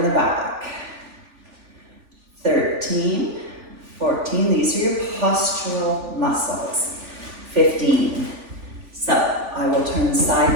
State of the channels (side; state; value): left; late; 3.4 ms